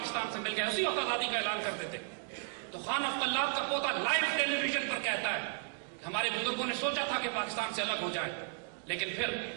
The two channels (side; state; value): left; silent; 55 dB below the other